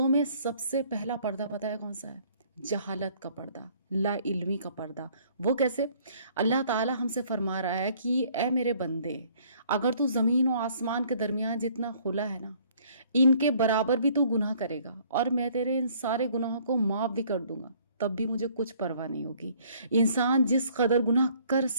میں سب سے پہلا پردہ پتہ ہے کون سا ہے؟ جہالت کا پردہ، لا علمی کا پردہ۔ وہ کیسے؟ اللہ تعالی ہم سے فرما رہا ہے کہ اے میرے بندے، اگر تو زمین و آسمان کے درمیان جتنا خلا ہے نا، ان کے برابر بھی تو گناہ کرے گا اور میں تیرے ان سارے گناہوں کو معاف بھی کر دوں گا، تب بھی مجھے کچھ پرواہ نہیں ہوگی۔ انسان جس قدر گناہ کر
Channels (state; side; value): inverted; both; correlation -0.59